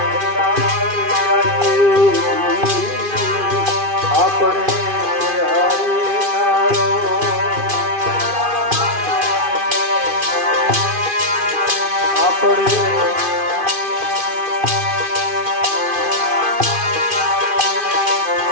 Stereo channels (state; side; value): late; left; 2.5 ms